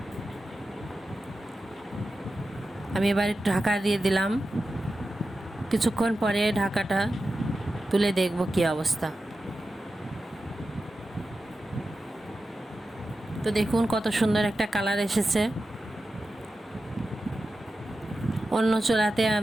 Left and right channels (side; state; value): both; normal; correlation 0.92